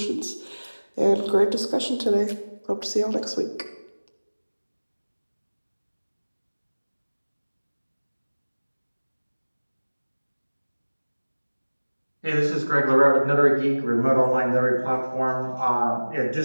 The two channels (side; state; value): both; inverted; correlation -1.00